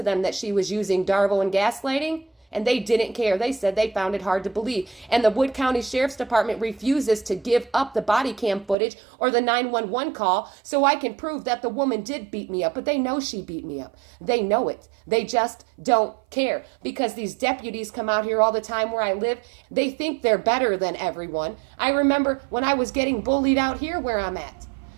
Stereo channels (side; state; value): left; drops out; at 8.8 s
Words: them that she was using Darvo and gaslighting, and they didn't care. They said they found it hard to believe. And the Wood County Sheriff's Department refuses to give up the body cam footage or the 911 call so I can prove that the woman did beat me up. But they know she beat me up. They know it. They just don't care, because these deputies come out here all the time where I live. They think they're better than everyone. I remember when I was getting bullied out here where I'm at.